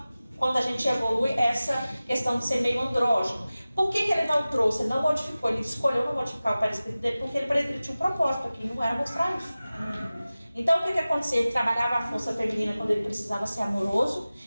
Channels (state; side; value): inverted; both; correlation -0.97